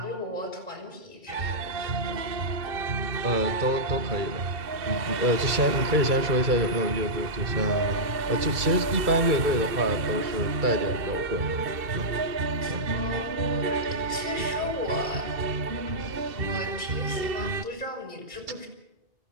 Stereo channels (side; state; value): left; late; 2.3 ms